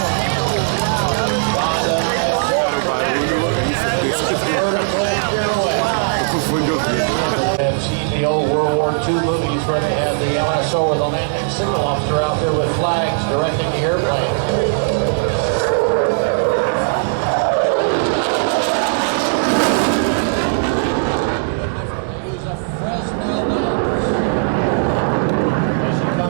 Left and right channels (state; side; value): silent; left; digital silence